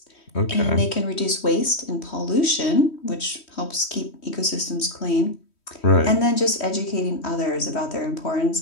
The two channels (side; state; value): right; late; 3.1 ms